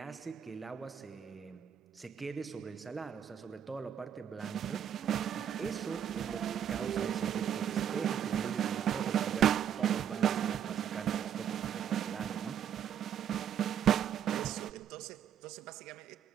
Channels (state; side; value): quieter; left; 9.1 dB